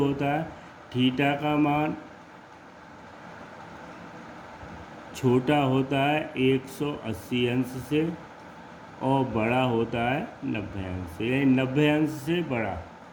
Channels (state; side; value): identical; both; correlation 1.00